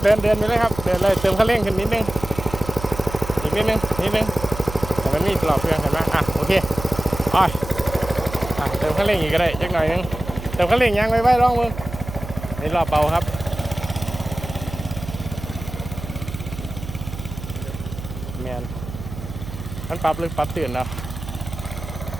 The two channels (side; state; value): right; noise; hum, 10 dB below the sound